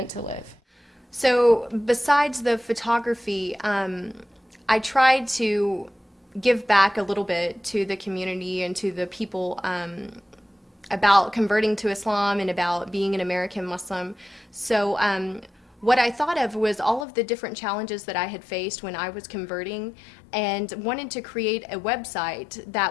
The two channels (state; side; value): drops out; right; at 17.1 s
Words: to live. So besides the photography, I tried to give back a little bit to the community and to the people about converting to Islam and about being an American Muslim. So what I thought of was all of the different challenges that I had faced when I was converting, and wanted to create a website